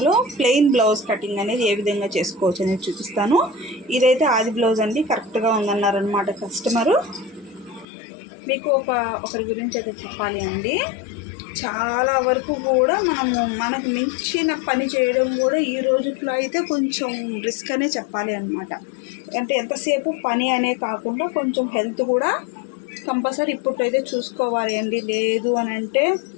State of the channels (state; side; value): drops out; right; at 7.9 s